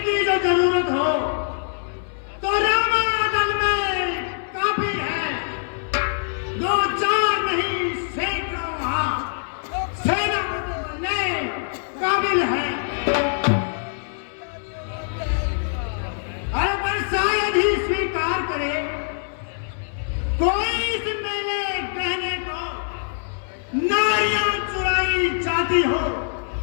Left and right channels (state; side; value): silent; right; 59 dB below the other